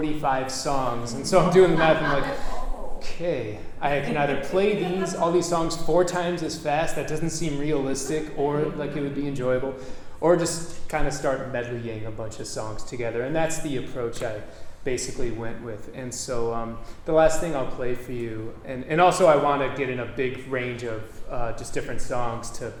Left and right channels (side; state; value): both; identical; correlation 1.00